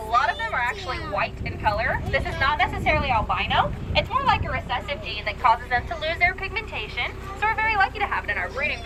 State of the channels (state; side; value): identical; both; correlation 1.00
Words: of them are actually white in color. This is not necessarily albino. It's more like a recessive gene that causes them to lose their pigmentation. So we're very lucky to have it in our breeding